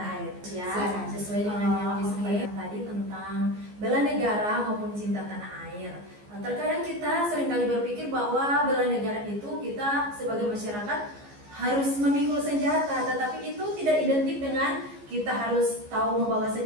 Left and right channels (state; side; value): late; left; 14 ms